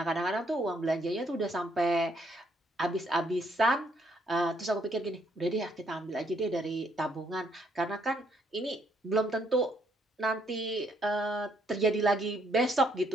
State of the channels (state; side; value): normal; both; correlation 0.71